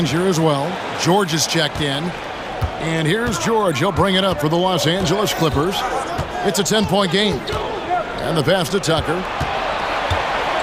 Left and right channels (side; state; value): both; identical; correlation 1.00